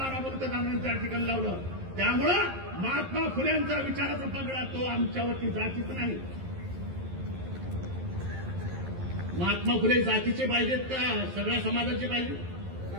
बलुतेदारांनी त्या ठिकाणी लावलं. त्यामुळं महात्मा फुलेंचा विचाराचा पगडा तो आमच्यावरती जातीच नाही. महात्मा फुले जातीचे पाहिजेत का सगळ्या समाजाचे पाहिजे?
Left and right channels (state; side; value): late; left; 11 ms